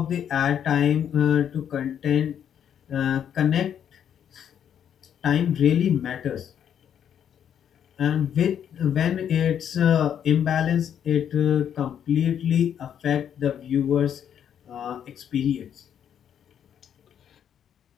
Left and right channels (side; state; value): right; quieter; 9.0 dB